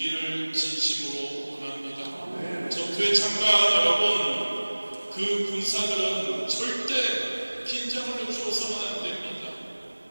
진심으로 원합니다. 전투에 참가한 여러분, 그 군사들은 절대 긴장을 주어서는 안 됩니다.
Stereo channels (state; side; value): inverted; both; correlation -1.00